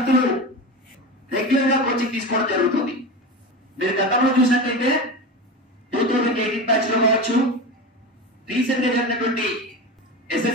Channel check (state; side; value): normal; both; correlation 0.25